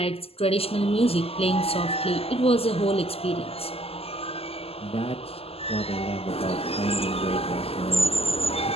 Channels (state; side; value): late; right; 0.29 ms